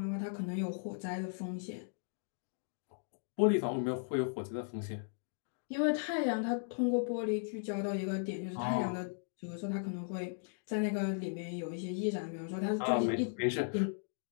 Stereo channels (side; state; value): right; silent; digital silence